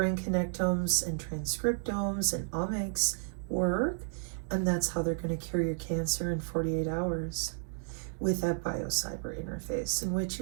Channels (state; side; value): silent; left; digital silence